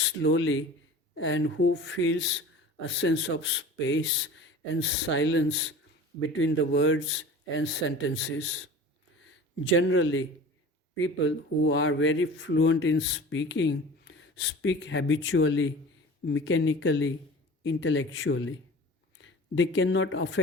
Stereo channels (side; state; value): both; normal; correlation 0.39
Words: and who feels a sense of space and silence between the words and sentences. Generally, people who are very fluent in speaking speak habitually, mechanically, intellectually. They cannot